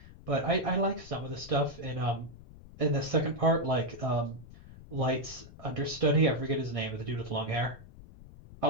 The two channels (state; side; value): noise; left; rumble, 18 dB below the sound